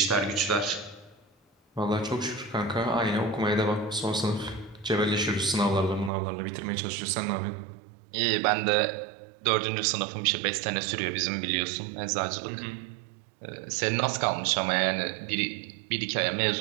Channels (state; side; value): drops out; left; at 6.1 s